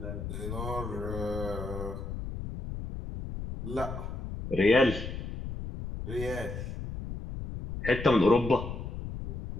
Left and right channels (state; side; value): noise; left; rumble, 7 dB below the sound